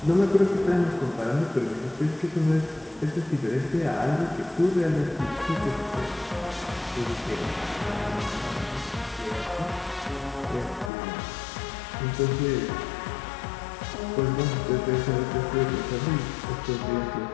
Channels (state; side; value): drops out; right; at 10.9 s